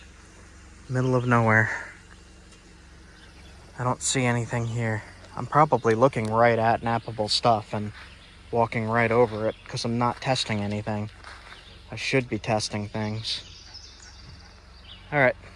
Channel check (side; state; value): both; identical; correlation 1.00